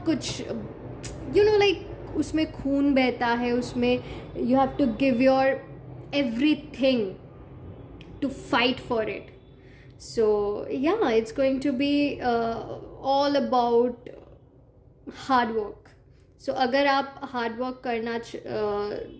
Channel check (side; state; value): both; identical; correlation 1.00